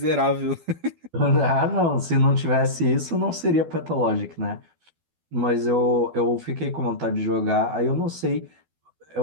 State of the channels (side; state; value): left; late; 12 ms